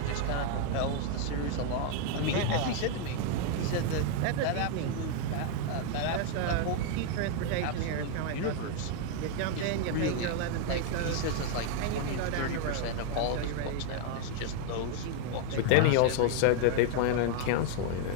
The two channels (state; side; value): different; both; correlation 0.00